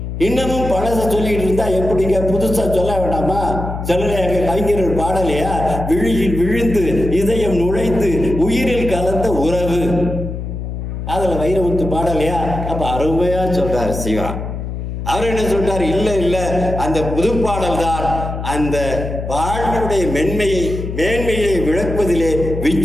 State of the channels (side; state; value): left; noise; hum, 6 dB below the sound